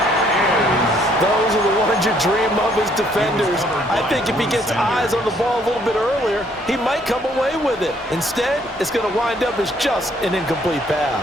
Those are the ones you dream of as defenders. I think if he gets eyes on the ball a little bit earlier, he might come away with it. Instead, it's going to wind up as just an incomplete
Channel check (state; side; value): normal; both; correlation 0.66